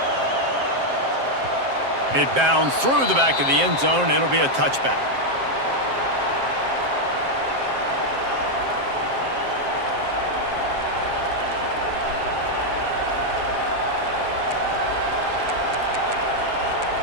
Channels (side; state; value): left; late; 7.5 ms